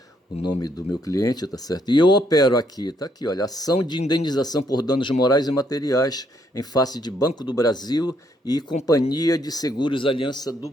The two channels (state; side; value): normal; both; correlation 0.72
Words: o nome do meu cliente, tá certo? E eu opero aqui, tá aqui, olha, ação de indenização por danos morais e materiais em face de Banco do Brasil e Companhia de Seguros Aliança do